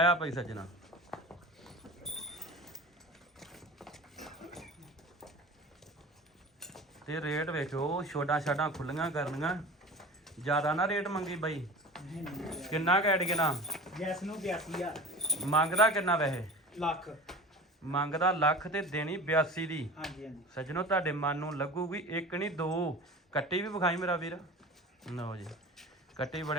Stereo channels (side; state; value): both; normal; correlation 0.37